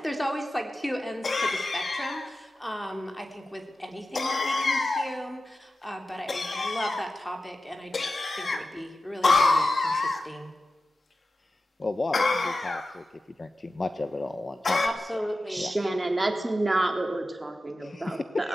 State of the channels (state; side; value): normal; both; correlation 0.93